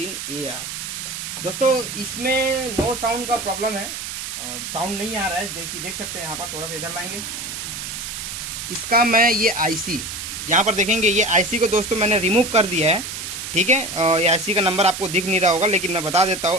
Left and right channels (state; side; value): noise; right; hiss, 7 dB below the sound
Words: दोस्तों इसमें नो साउंड का प्रॉब्लम है, साउंड नहीं आ रहा है। देख सकते हैं यहाँ पर, थोड़ा सा इधर लाएंगे। इसका मैं ये आईसी यहाँ पर देखेंगे, ये आईसी को दोस्तों मैंने रिमूव कर दिया है। ठीक है, ये आईसी का नंबर आपको दिख नहीं रहा होगा लेकिन मैं बता देता